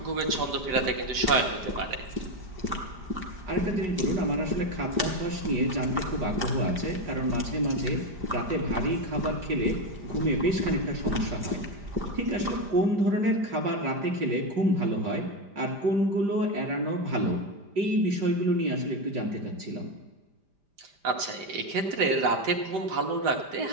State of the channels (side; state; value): left; late; 5.0 ms